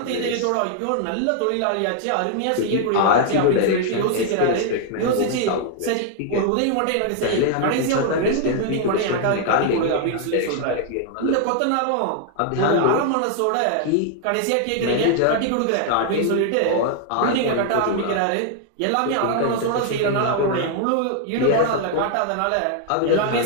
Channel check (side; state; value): both; different; correlation 0.00